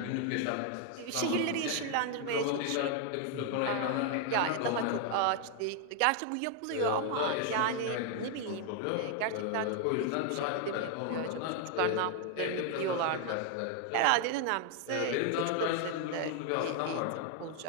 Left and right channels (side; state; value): both; different; correlation 0.00